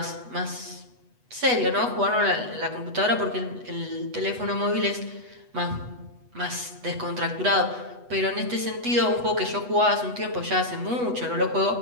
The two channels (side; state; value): left; late; 8.1 ms